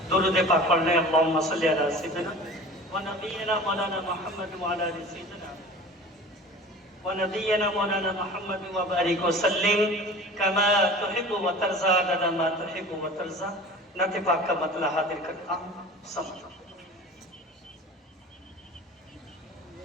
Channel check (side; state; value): both; normal; correlation 0.39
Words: درود پاک پڑھ لیں اللہم صلی علی سیدنا ونبینا مولانا محمد وعلی آل سیدنا ونبینا مولانا محمد وبارک وسلم کما تحب و ترضى عدد ما تحب و ترضى. نعت پاک کا مطلع حاضر کرتا ہوں سمجھ.